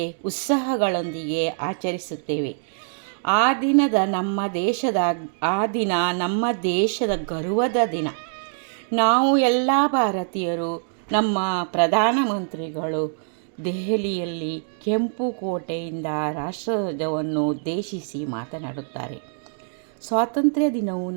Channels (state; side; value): silent; left; digital silence